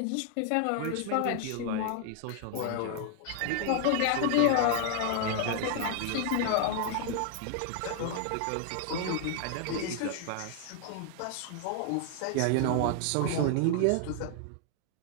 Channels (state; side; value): different; both; correlation 0.00